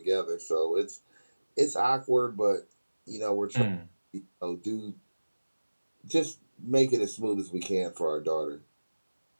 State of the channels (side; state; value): both; inverted; correlation -1.00